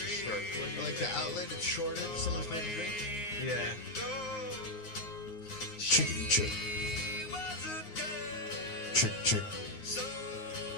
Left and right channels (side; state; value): right; late; 9.6 ms